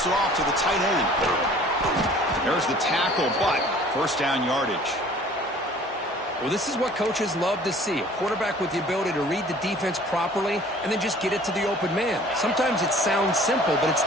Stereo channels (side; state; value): both; normal; correlation 0.51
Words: it off to the tight end. There's the tackle, but first down yardage. Well, this is what coaches love to see. A quarterback with the ability to read the defense properly and then just get it to the open man. Sometimes it sounds simple, but it's